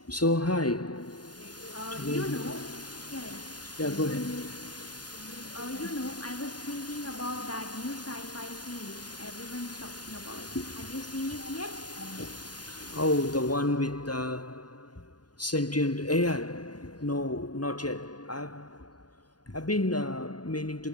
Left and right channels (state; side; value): late; right; 0.70 ms